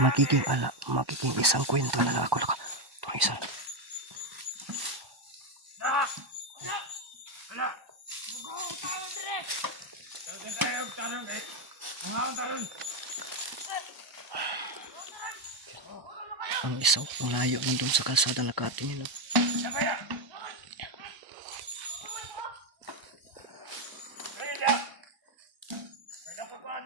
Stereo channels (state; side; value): late; left; 1.0 ms